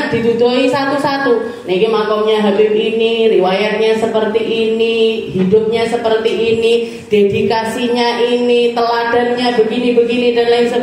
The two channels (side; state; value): both; identical; correlation 1.00